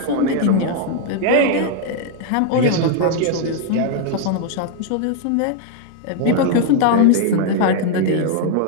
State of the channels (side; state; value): both; different; correlation 0.00